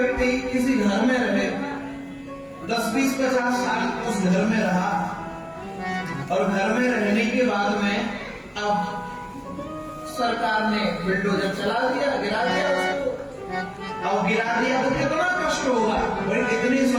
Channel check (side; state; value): both; identical; correlation 1.00